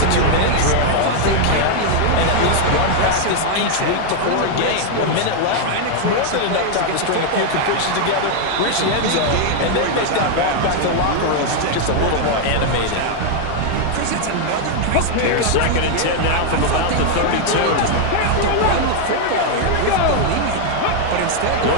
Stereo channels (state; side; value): different; both; correlation 0.00